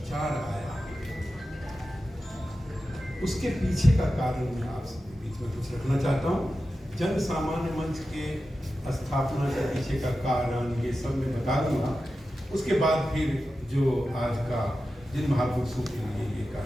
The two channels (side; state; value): both; normal; correlation 0.92